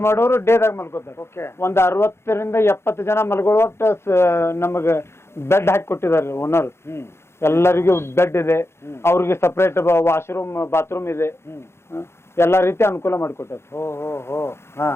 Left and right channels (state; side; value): late; right; 0.12 ms